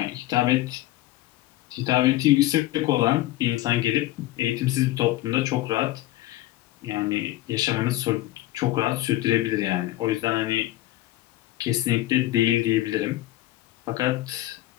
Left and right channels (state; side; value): quieter; right; 16.3 dB